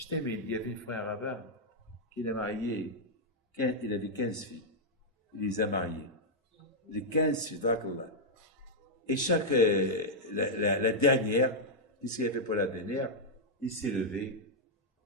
t'aime, il y avait un frère rabbin qui a marié, il avait 15 filles. Il les a mariées. Les 15 filles, d'Akallah. Et chaque, la dernière, qu'est-ce qu'il a fait pour la dernière? Il s'est levé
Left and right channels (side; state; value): both; normal; correlation -0.05